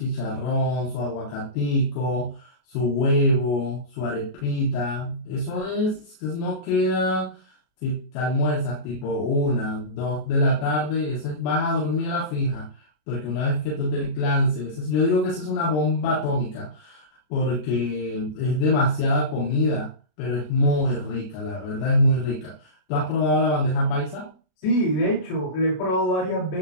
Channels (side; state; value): right; late; 33 ms